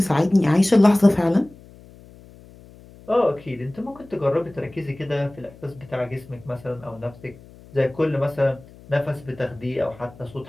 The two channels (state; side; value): noise; left; hum, 22 dB below the sound